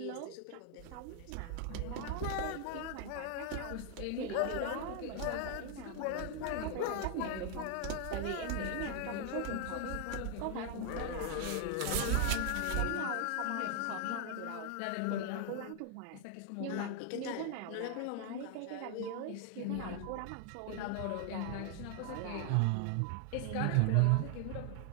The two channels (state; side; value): different; both; correlation 0.00